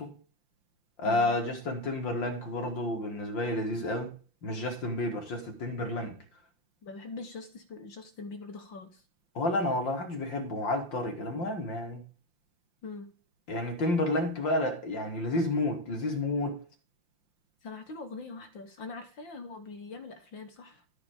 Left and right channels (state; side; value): late; right; 5.8 ms